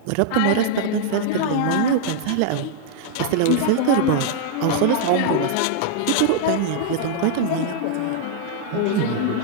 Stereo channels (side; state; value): both; different; correlation -0.01